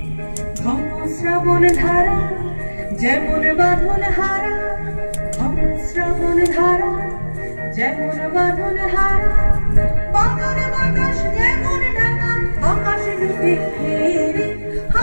ঘন শ্রাবণ ধারা যেমন বাঁধন হারা, ঘন শ্রাবণ ধারা যেমন বাঁধন হারা, বাঁধন বাতাস যেমন ডাকা আকাশ ডুবে রে।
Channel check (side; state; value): both; inverted; correlation -1.00